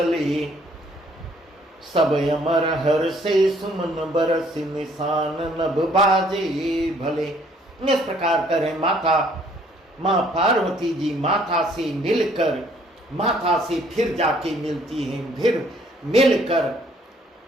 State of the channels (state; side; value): normal; both; correlation 0.62